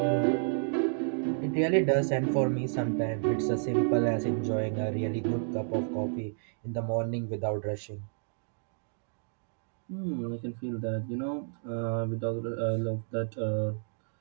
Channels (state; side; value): silent; left; digital silence